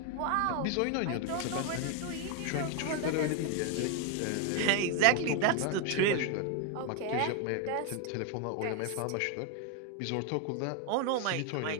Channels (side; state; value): both; different; correlation 0.01